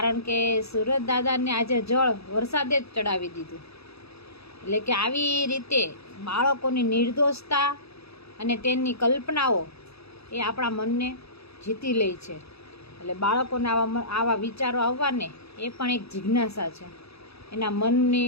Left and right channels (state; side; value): late; right; 0.78 ms